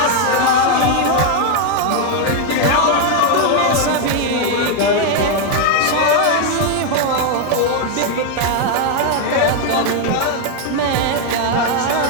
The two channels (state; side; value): different; both; correlation 0.01